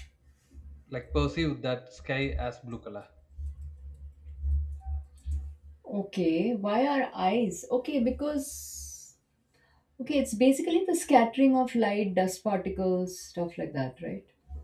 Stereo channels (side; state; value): both; identical; correlation 1.00